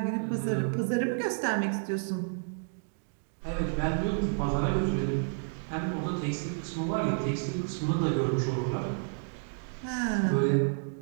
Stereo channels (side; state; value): left; silent; 57 dB below the other